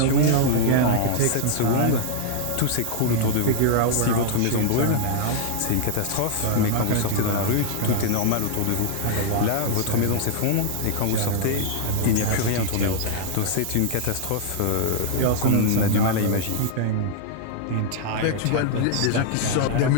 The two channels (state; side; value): different; both; correlation 0.00